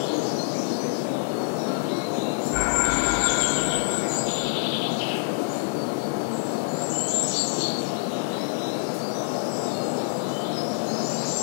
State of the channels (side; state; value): right; silent; digital silence